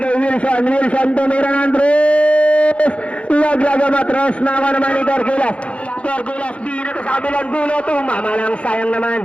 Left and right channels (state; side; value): late; right; 0.062 ms